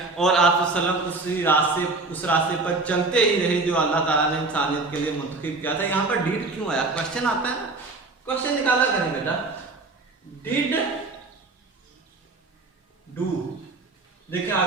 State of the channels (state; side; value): quieter; left; 3.5 dB